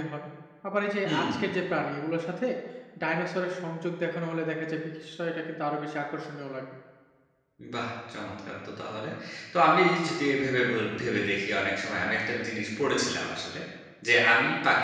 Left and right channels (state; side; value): identical; both; correlation 1.00